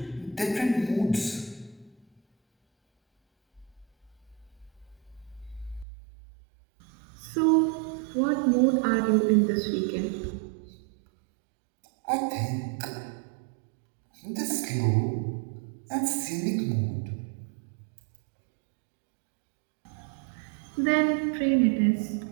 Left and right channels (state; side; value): drops out; left; at 5.9 s